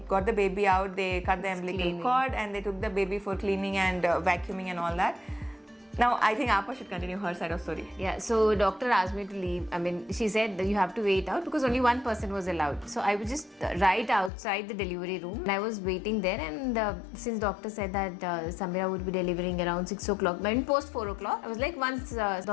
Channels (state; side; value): drops out; right; at 14.3 s